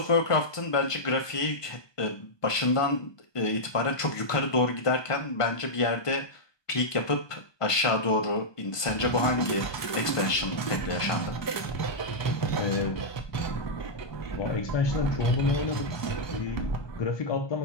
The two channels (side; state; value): right; late; 1.2 ms